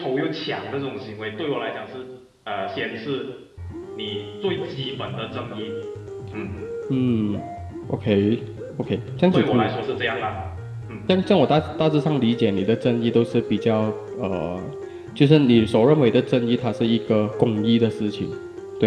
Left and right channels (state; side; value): identical; both; correlation 1.00